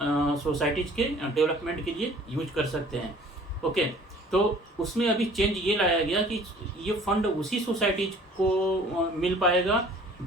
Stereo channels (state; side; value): normal; both; correlation 0.52